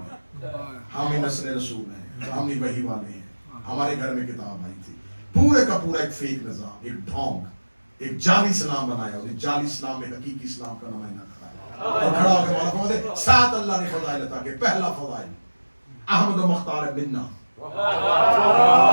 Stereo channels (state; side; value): inverted; both; correlation -1.00